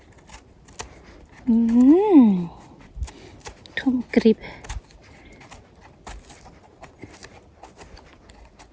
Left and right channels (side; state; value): both; identical; correlation 1.00